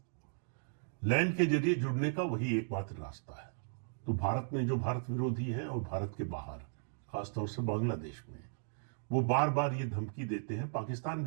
लैंड के जरिए जुड़ने का वही एकमात्र रास्ता है। तो भारत में जो भारत विरोधी है और भारत के बाहर, खासतौर से बांग्लादेश में, वो बार बार ये धमकी देते हैं, पाकिस्तान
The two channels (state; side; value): silent; left; digital silence